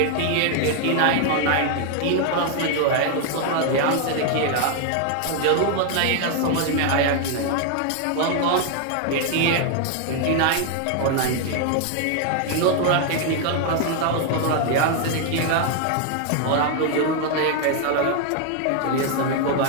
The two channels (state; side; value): different; both; correlation 0.00